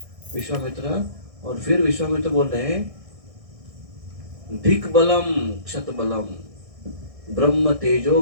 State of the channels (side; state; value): left; late; 1.6 ms